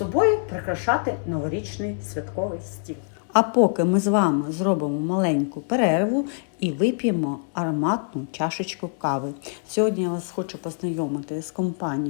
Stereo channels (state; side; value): silent; right; 60 dB below the other